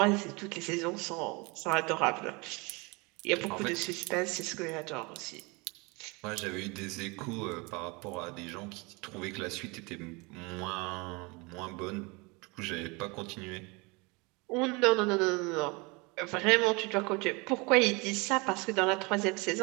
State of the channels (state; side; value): quieter; left; 27.5 dB